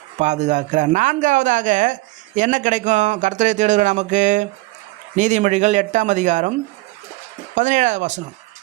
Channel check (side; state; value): left; quieter; 20.9 dB